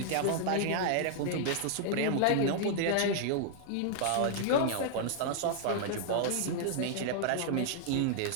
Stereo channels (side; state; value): both; different; correlation -0.01